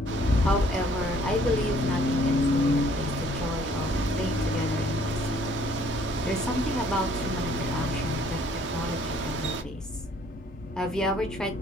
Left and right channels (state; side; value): normal; both; correlation 0.60